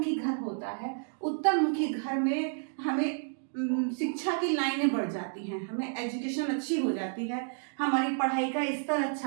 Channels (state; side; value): silent; left; digital silence